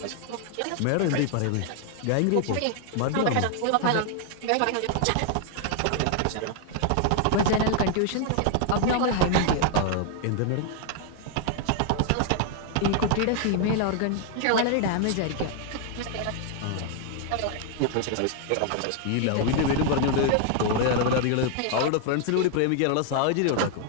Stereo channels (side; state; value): both; different; correlation 0.00